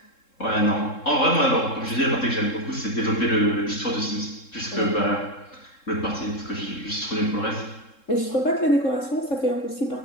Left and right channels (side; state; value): right; late; 3.7 ms